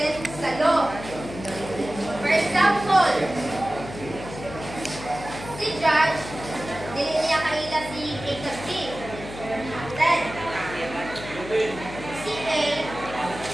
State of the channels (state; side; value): noise; left; hum, 12 dB below the sound